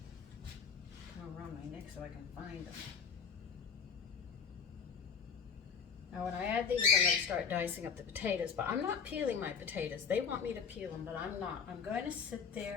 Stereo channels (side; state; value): right; quieter; 6.3 dB